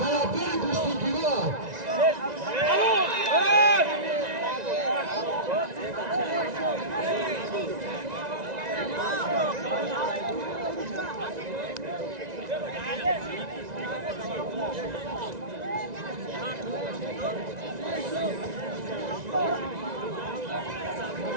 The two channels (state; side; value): late; left; 1.9 ms